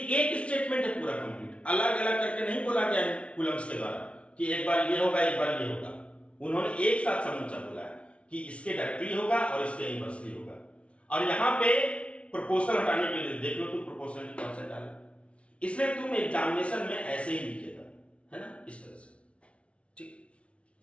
एक स्टेटमेंट है पूरा कंप्लीट, अलग अलग करके नहीं बोला गया है कूलम्स के द्वारा कि एक बार ये होगा एक बार ये होगा। उन्होंने एक साथ समूचा बोला है कि इसके डायरेक्टली होगा और इसके इनवर्सली होगा। और यहां पे प्रोपोर्शनल हटाने के लिए देख लो तुम, प्रोपोर्शनलिटी कांस्टेंट डालो, इसलिए तुम एग्जामिनेशन में ऐसे ही लिखेगा, है ना, इस तरह से, ठीक।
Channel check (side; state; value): right; late; 0.061 ms